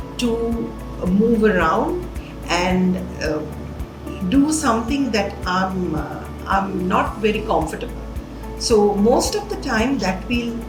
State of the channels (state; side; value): identical; both; correlation 1.00